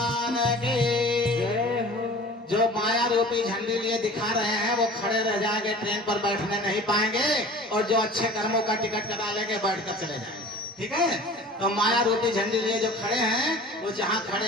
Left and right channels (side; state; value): both; normal; correlation 0.43